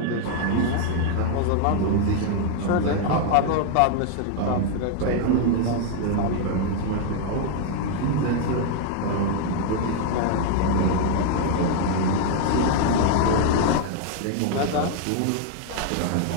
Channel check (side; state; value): both; different; correlation 0.00